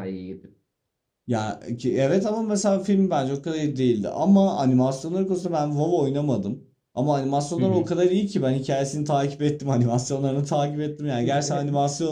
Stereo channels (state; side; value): identical; both; correlation 1.00